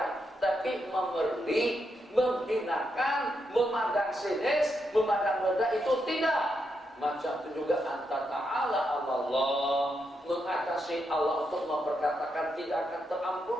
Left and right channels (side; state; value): both; normal; correlation 0.82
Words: Tapi memerli, menghinakan, memandang sinis, memandang rendah itu tidak. Macam itu juga anta ta'ala Allah, mengatasi Allah untuk memperkatakan tidak akan